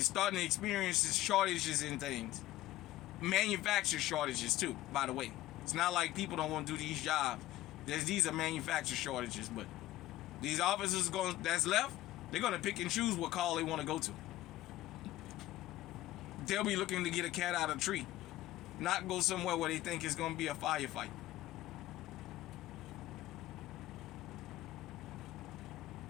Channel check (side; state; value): right; quieter; 15.7 dB